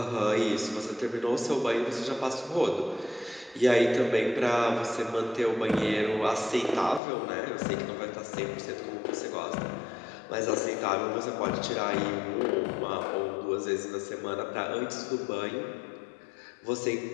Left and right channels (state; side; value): drops out; right; at 7.0 s